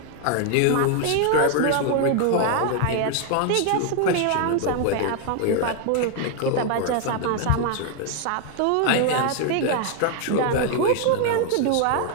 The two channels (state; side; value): different; both; correlation 0.00